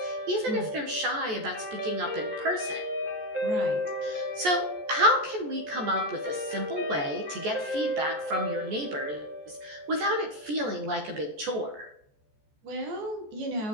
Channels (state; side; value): late; left; 14 ms